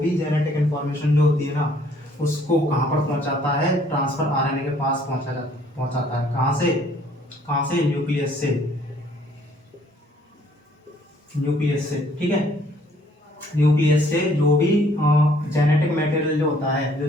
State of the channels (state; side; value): normal; both; correlation 0.62